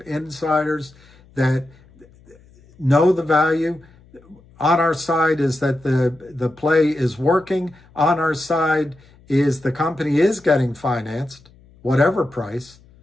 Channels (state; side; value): noise; left; hum, 27 dB below the sound